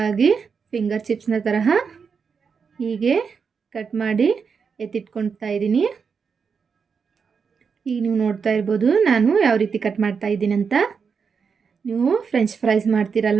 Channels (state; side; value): quieter; left; 5.9 dB